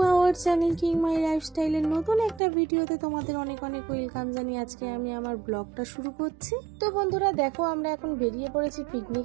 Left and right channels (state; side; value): drops out; left; at 2.4 s